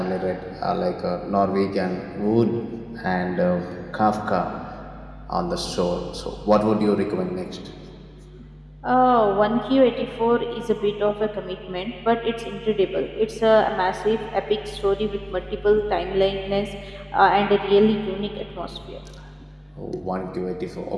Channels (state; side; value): identical; both; correlation 1.00